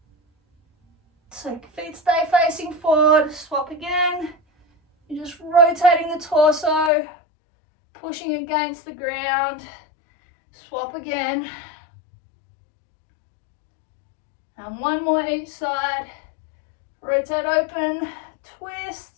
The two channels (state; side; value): drops out; right; at 6.9 s